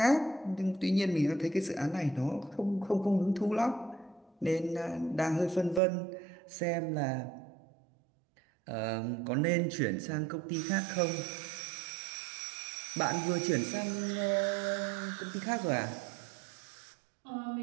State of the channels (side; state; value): left; drops out; at 5.8 s